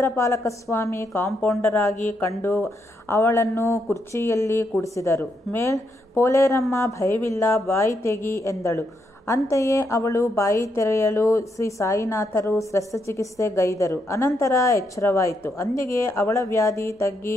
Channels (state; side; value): normal; both; correlation 0.79